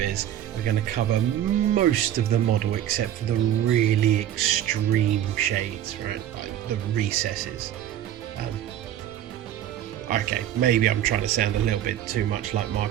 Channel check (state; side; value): quieter; left; 11.4 dB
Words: we're going to cover most of the model except for the really extreme shades, right, like the recesses. Okay, maybe I'm trying to sound a little bit too much like